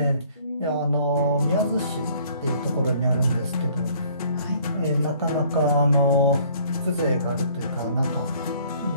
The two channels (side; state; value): both; inverted; correlation -0.58